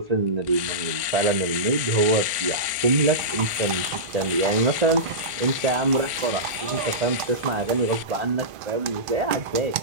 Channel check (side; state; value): left; late; 1.5 ms